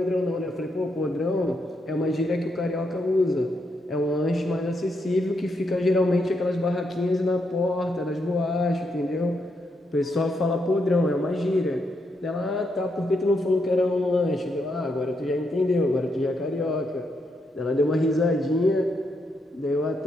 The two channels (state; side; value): normal; both; correlation 0.80